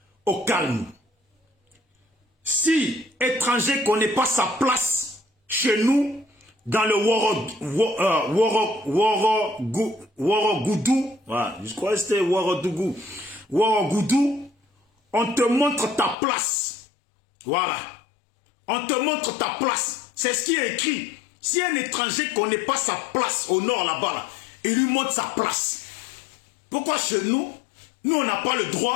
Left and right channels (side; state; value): right; drops out; at 16.2 s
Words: au calme. Si étranger connaît pas sa place chez nous, dans le Worogoudou, je crois que c'était Worogoudou, on te montre ta place. Voilà. On te montre ta place. C'est ce qui est écrit. Si un étranger connaît pas sa place au Nord là-bas, là, il lui montre sa place. Pourquoi chez nous, on n'a pas le